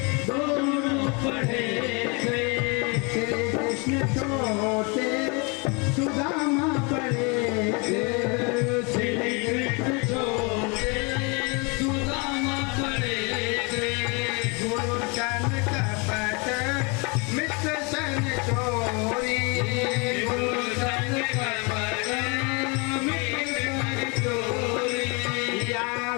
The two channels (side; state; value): right; quieter; 31.3 dB